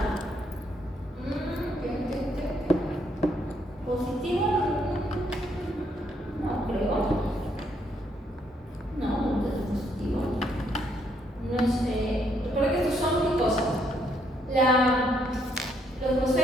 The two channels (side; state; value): both; normal; correlation 0.72